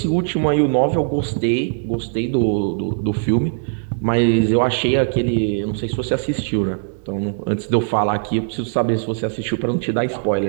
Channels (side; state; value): left; silent; digital silence